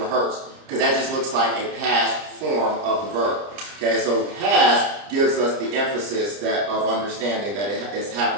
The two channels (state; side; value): late; left; 30 ms